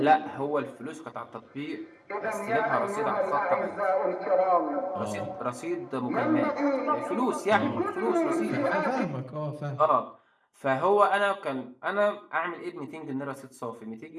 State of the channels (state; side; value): identical; both; correlation 1.00